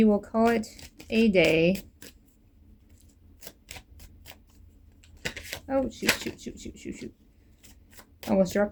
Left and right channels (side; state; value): both; identical; correlation 1.00